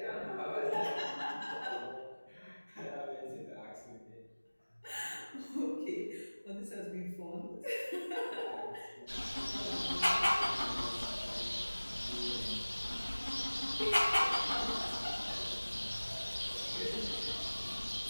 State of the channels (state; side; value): inverted; both; correlation -1.00